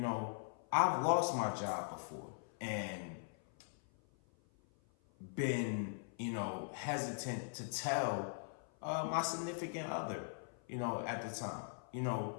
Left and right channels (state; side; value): silent; right; 51 dB below the other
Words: I've lost my job before and been, hesitant to tell my significant other, at the time,